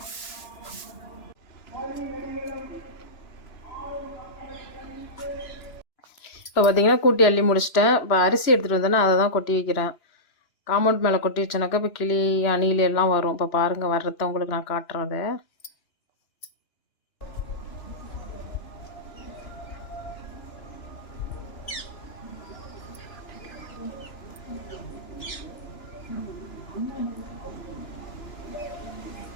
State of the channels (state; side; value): late; right; 2.9 ms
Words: இப்போ பார்த்தீங்கன்னா கூட்டி அள்ளி முடிச்சிட்டேன். இப்போ அரிசி எடுத்துகிட்டு வந்தேன்னா அதை தான் கொட்டி வைக்கிறேன். காம்பவுண்ட் மேலே கொட்டி வச்சேனாக்கா இப்போ கிளி, அணில் எல்லாம் வரும். இப்போ பாருங்கள், வர்றத உங்களுக்கு நான் காட்டுறேன் அதை.